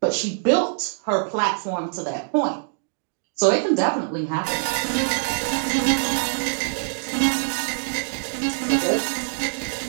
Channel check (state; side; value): silent; left; digital silence